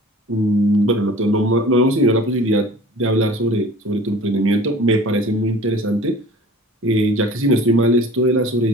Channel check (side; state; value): both; normal; correlation 0.44